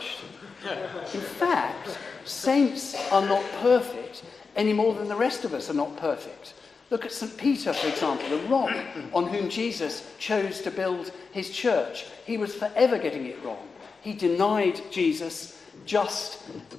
In fact, Saints are not perfect any more than the rest of us are not perfect. Look at St. Peter, for example, the rock on whom Jesus chose to build his church. He was forever getting it wrong. He denied Jesus just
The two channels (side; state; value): right; quieter; 4.8 dB